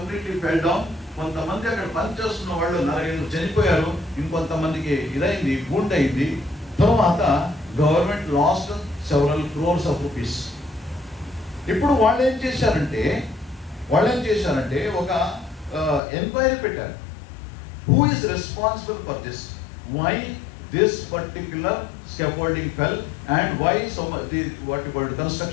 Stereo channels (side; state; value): right; drops out; at 16.0 s